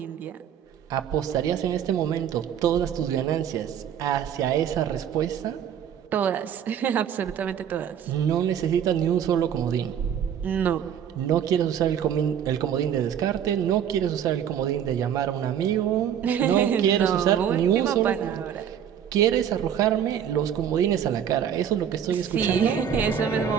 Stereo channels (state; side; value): quieter; left; 9.0 dB